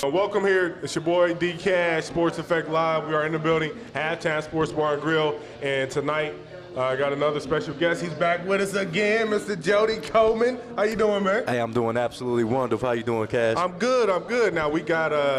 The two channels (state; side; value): identical; both; correlation 1.00